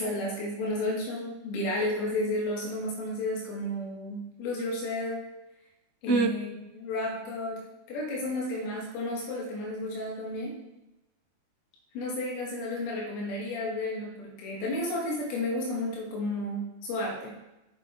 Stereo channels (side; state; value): right; late; 21 ms